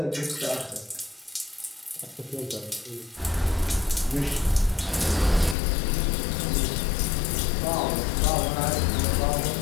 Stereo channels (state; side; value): drops out; right; at 5.6 s